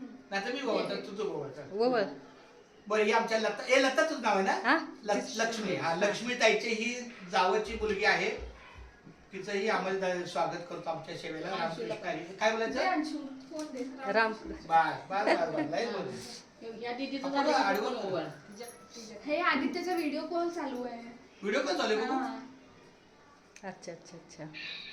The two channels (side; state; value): both; identical; correlation 1.00